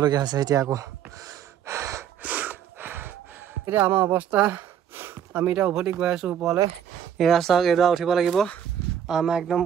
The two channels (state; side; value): quieter; left; 9.4 dB